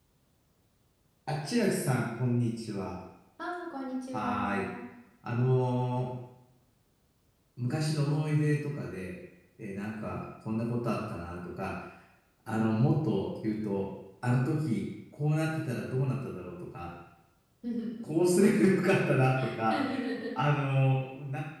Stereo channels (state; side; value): identical; both; correlation 1.00